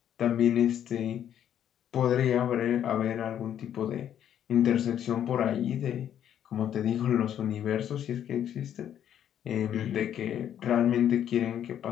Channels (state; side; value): quieter; right; 10.1 dB